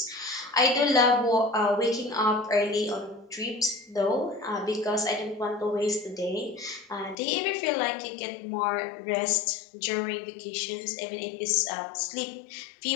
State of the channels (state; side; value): drops out; right; at 7.2 s